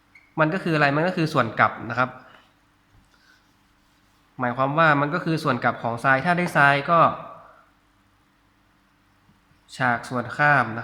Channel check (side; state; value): both; identical; correlation 1.00